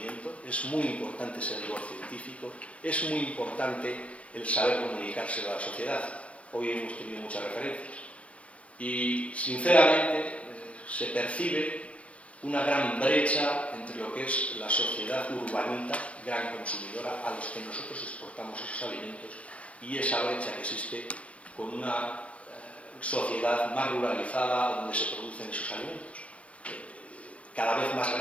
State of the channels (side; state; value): right; late; 0.063 ms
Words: Es muy importante ese rigor científico, es muy importante el saber comunicárselo a la sociedad. Hoy hemos tenido muchas referencias. Y, sinceramente, se percibe una gran brecha entre lo que es la sociedad urbanita, gran consumidora, a los que nosotros exportamos esos alimentos, y esa brecha que existe con una sociedad más ruralizada donde se producen esos alimentos, cada vez más